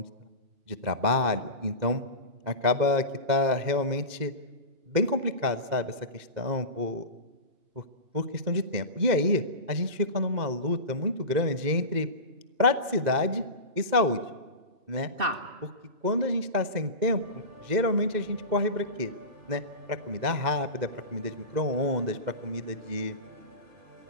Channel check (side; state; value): left; late; 2.1 ms